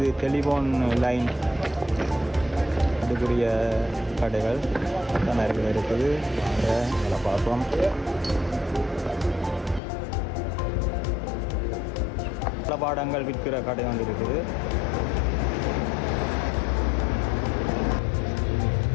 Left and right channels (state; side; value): drops out; right; at 9.8 s